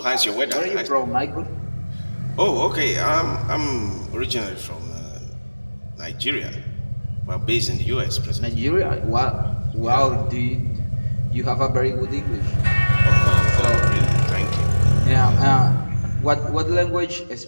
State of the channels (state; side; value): inverted; both; correlation -1.00